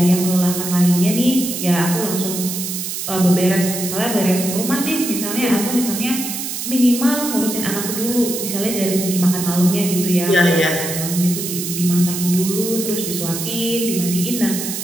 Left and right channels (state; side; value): noise; right; hiss, 5 dB below the sound